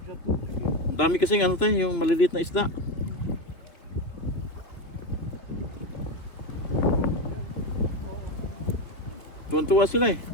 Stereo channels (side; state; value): right; late; 2.6 ms